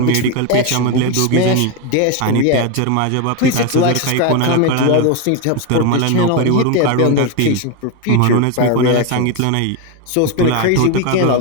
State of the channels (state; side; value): different; both; correlation 0.02